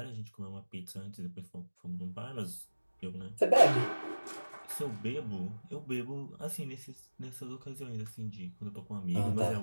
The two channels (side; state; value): both; inverted; correlation -1.00